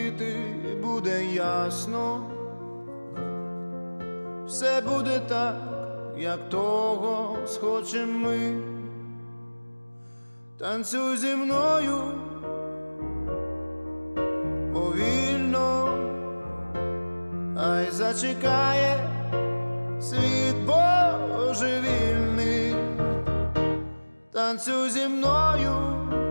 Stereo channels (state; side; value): inverted; both; correlation -1.00